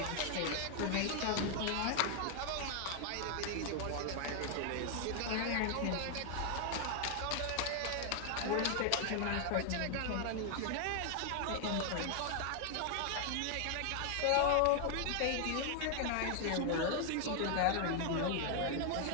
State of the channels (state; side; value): different; both; correlation 0.00